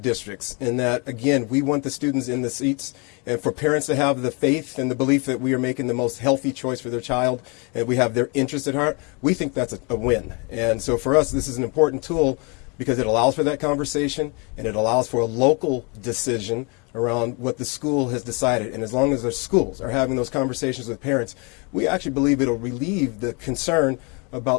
And that, again, we want the students in the seats and for parents to have the faith and the belief that we are making the most healthy choice for their child and we have their interest at heart. We think that's a win. And so for us, this is an important tool because it allows for that conversation and it allows for a local decision around what the school has decided. And as long as the schools are having those conversations with parents, we actually believe it'll relieve the concern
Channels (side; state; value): right; quieter; 31.9 dB